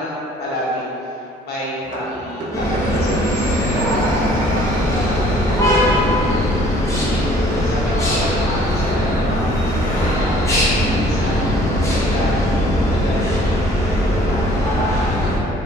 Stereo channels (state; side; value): normal; both; correlation 0.56